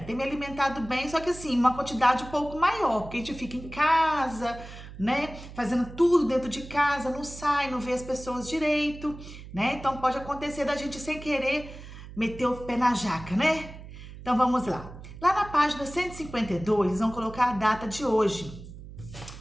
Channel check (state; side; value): noise; right; hum, 14 dB below the sound